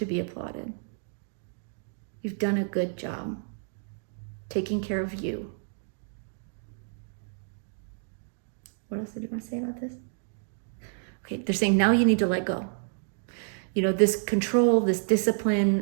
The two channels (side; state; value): left; silent; digital silence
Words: be applauded. You've done a good job taking care of you. What else did you want to say about this? Okay, they're saying now you need to let go. You know, this control, this